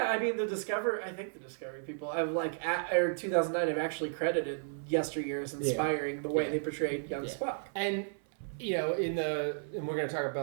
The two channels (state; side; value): silent; left; 55 dB below the other